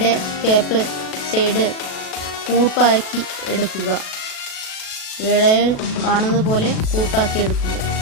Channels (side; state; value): right; late; 37 ms